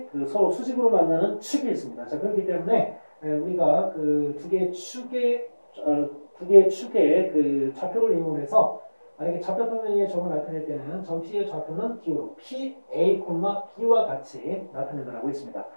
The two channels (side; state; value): both; inverted; correlation -1.00